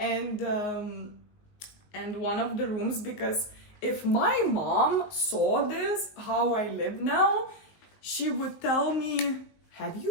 one of the rooms, because if my mom saw this, how I live now, she would tell me, have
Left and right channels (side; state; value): right; late; 19 ms